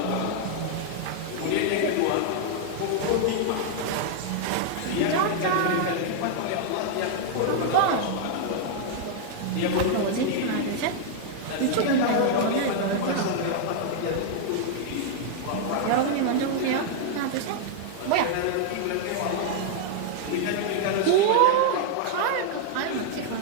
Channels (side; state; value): both; different; correlation -0.01